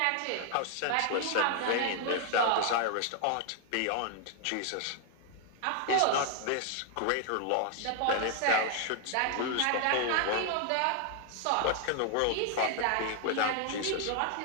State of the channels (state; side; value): different; both; correlation 0.00